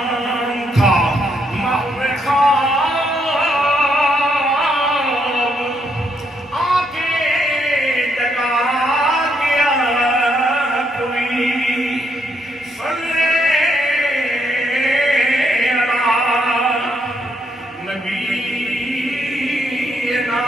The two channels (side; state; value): both; normal; correlation 0.75